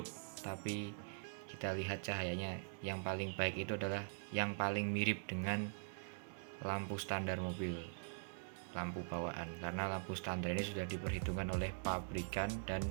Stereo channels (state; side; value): silent; left; digital silence